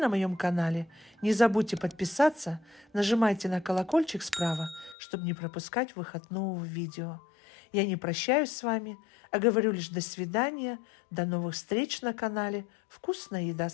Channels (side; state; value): right; drops out; at 5.0 s